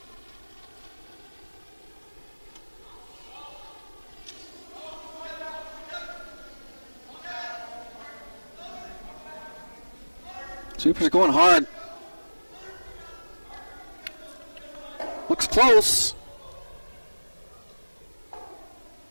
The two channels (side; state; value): both; inverted; correlation -1.00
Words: Sweeper's going hard. Looks close.